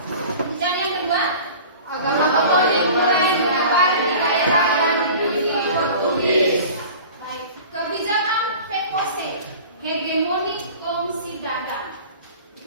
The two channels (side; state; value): both; inverted; correlation -0.41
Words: dan yang kedua agama Katolik mulai menyebar di daerah yang dimiliki Portugis. Baik, kebijakan VOC, hegemoni kongsi dagang.